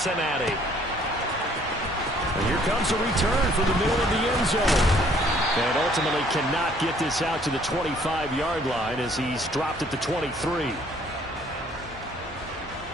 And here comes a return from the middle of the end zone. And ultimately cannot get this out to the 25-yard line as he's dropped at the 23.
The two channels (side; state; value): both; normal; correlation 0.61